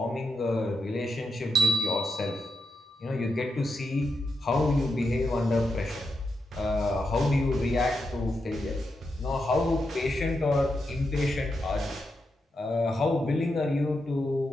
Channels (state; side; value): normal; both; correlation 0.84